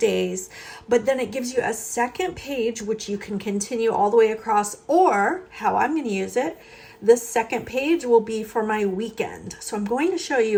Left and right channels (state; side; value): identical; both; correlation 1.00